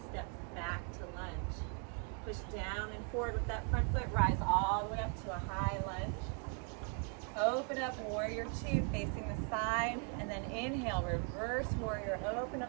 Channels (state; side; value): quieter; left; 38.6 dB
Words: steps back to lunge. Push down and forward with that front foot, rise all the way up to a high lunge. Open up warrior two facing the side, and then inhale, reverse warrior, open